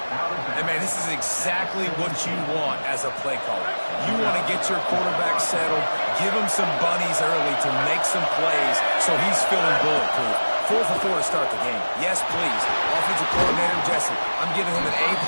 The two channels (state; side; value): inverted; both; correlation -1.00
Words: And, man, this is exactly what you want as a play caller. You want to get your quarterback settled, give him some bunnies early to make some plays so he's feeling bulletproof. 4 for 4 to start the game. Yes, please. Offensive coordinator Jesse, I'm giving him an